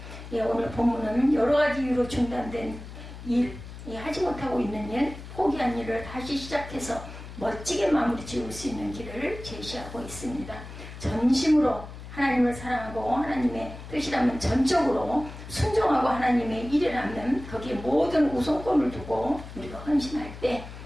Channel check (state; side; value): noise; left; hum, 13 dB below the sound